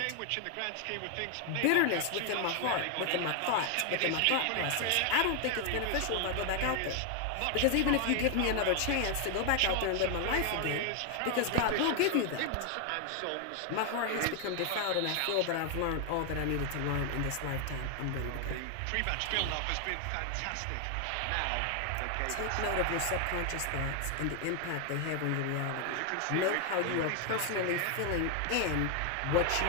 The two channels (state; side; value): different; both; correlation 0.00